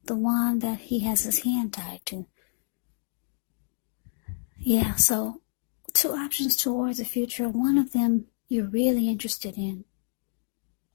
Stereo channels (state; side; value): silent; right; digital silence